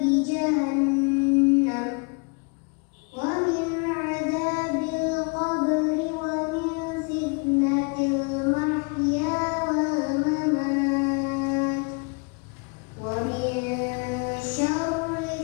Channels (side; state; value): right; quieter; 34.1 dB